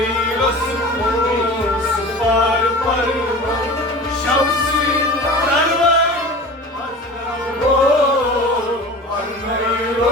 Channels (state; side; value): normal; both; correlation 0.37